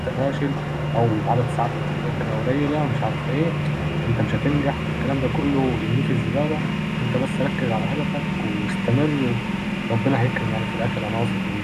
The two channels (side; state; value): both; identical; correlation 1.00